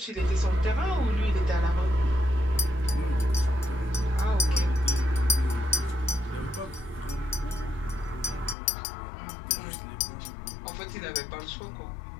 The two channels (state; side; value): drops out; right; at 8.6 s